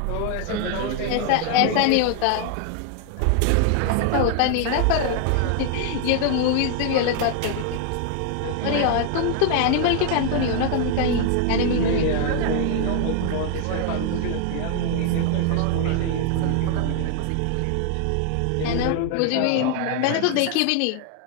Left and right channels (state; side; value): different; both; correlation 0.00